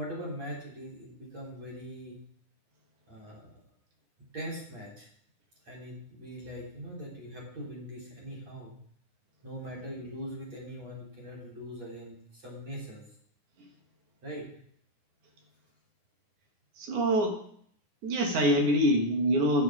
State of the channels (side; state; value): left; late; 9.6 ms